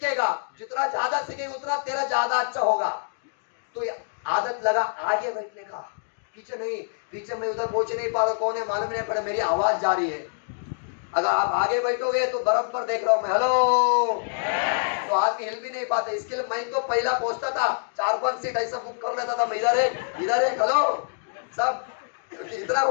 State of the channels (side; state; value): right; silent; digital silence